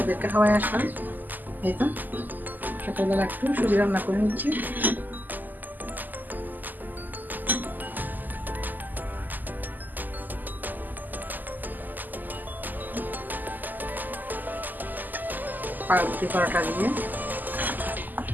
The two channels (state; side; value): late; left; 0.085 ms